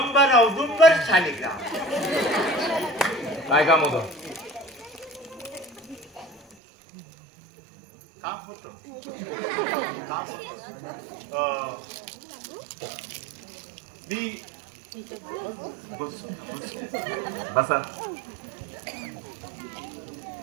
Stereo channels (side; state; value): left; drops out; at 6.6 s